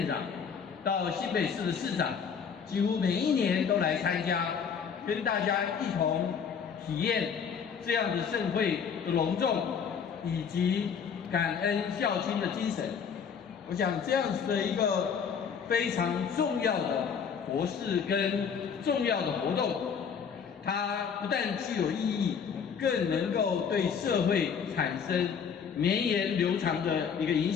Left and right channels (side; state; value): right; quieter; 6.8 dB